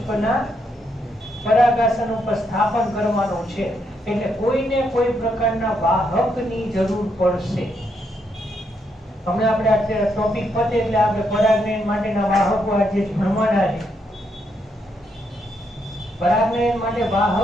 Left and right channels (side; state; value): both; normal; correlation 0.77